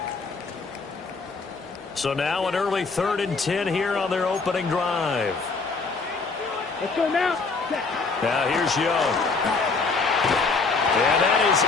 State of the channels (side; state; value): right; quieter; 4.3 dB